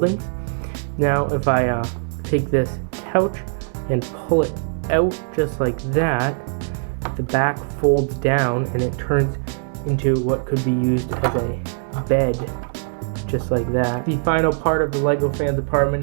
Now, if I take this couch and pull it out just like that, the back folds down and it turns into what could be used as a bed, just like that. The final part of the Lego Fans apartment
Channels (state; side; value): silent; left; 65 dB below the other